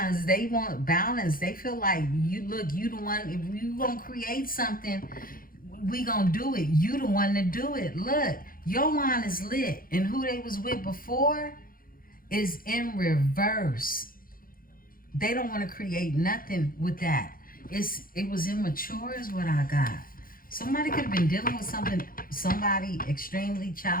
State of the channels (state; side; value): late; right; 0.41 ms